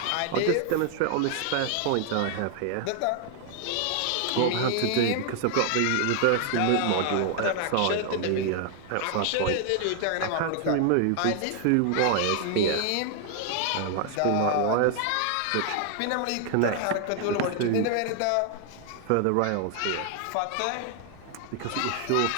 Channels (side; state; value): both; different; correlation 0.00